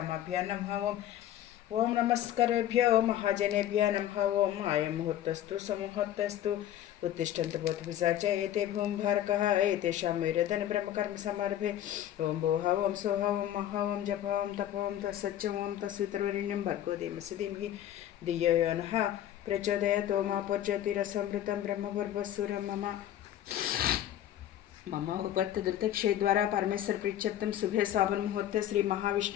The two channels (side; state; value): right; quieter; 11.8 dB